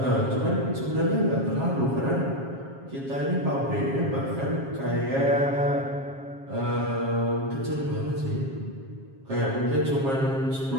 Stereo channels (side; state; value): left; late; 7.4 ms